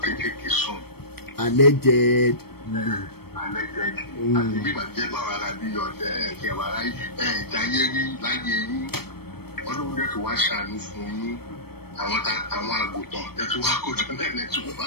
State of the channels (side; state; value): right; late; 0.96 ms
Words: kéékèèké sùn. Alleged. Àti bíbà jẹ́ báwa ara bí ọ̀tẹ̀ ẹ̀kẹ́ wàrà ìjáyé rí láyé yín. Ọlọ́run dẹ̀ tó wá ṣàánú fún yín. Àwọn àgùntàn tẹ̀ tó wá kójọ náà lẹ́tí wọ́n bá